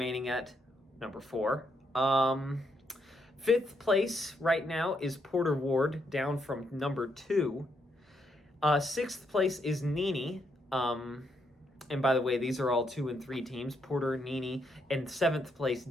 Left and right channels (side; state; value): both; normal; correlation 0.77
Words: at number 4. 5th place right now is Porter Ward, down from number 2. 6th place is Nini. And by the way, these are all 2 and 3 teams. Porter, Nini, and 7th place